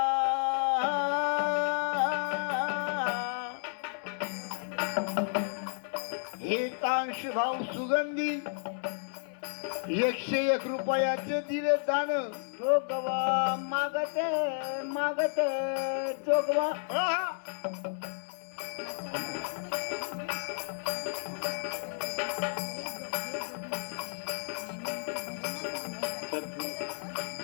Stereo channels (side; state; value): right; silent; digital silence